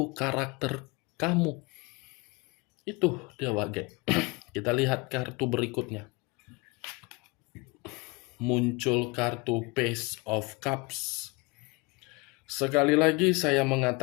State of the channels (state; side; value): quieter; right; 26.5 dB